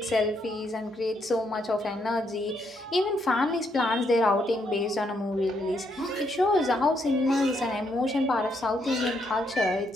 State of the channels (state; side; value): normal; both; correlation 0.76